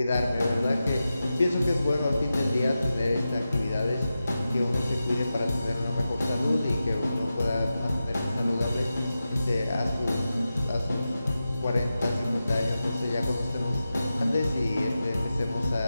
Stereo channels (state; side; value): inverted; both; correlation -0.92